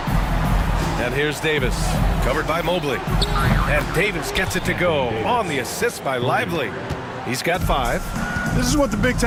And here's Davis, covered by Mobley. And Davis gets it to go on the assist by Lively. He's got 5. This is what the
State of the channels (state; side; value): identical; both; correlation 1.00